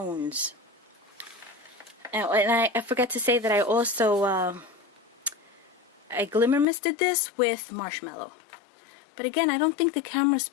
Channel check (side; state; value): right; drops out; at 6.7 s